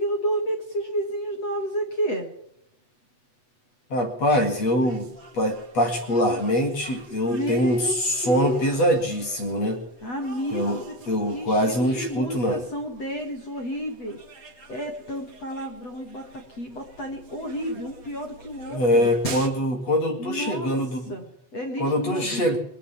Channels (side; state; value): right; late; 8.1 ms